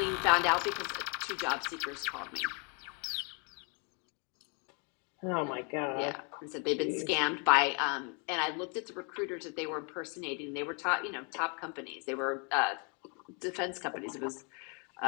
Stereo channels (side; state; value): right; quieter; 35.9 dB